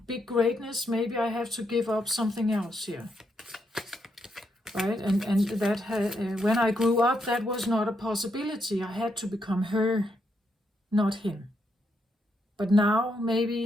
big greatness, maybe I have to give up something else here. Right? And that when I grew up, that was not a possibility. I had to become her, not him. But now,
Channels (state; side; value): normal; both; correlation 0.79